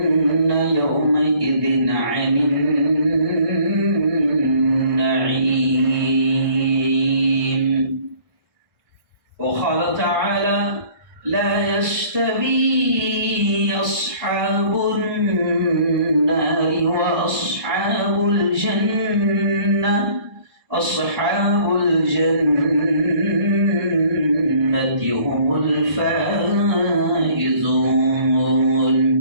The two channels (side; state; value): left; late; 1.4 ms